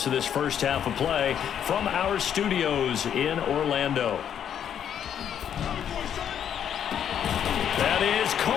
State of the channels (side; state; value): right; quieter; 9.1 dB